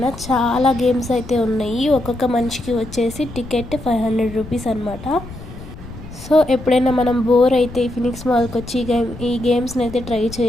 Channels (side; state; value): left; noise; rumble, 14 dB below the sound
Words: చాలా గేమ్స్ అయితే ఉన్నాయి. ఒక్కొక్క మనిషికి వచ్చేసి టికెట్ 500 రూపీస్ అనమాట. సో ఎప్పుడైనా మనం బోర్ అయితే ఫినిక్స్ మాల్కి వచ్చి ఈ గేమ్స్ని అయితే ట్రై